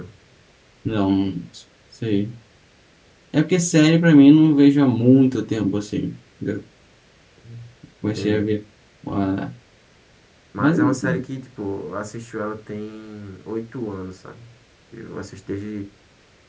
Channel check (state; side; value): identical; both; correlation 1.00